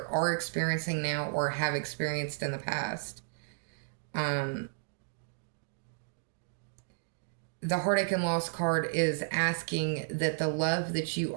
are experiencing now or have experienced in the past. The Heartache and Loss card is asking that the love that you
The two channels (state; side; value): silent; left; digital silence